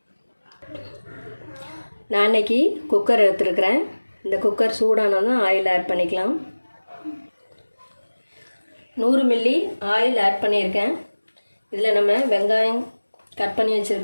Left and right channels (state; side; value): inverted; both; correlation -1.00